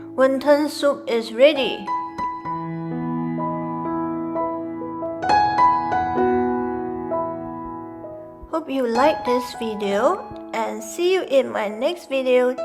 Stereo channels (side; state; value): both; identical; correlation 1.00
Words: Wonton soup is ready. Hope you like this video and see you in my next video.